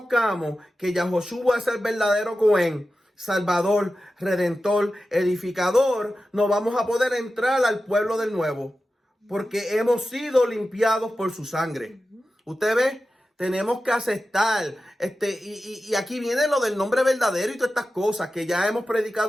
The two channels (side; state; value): both; normal; correlation 0.93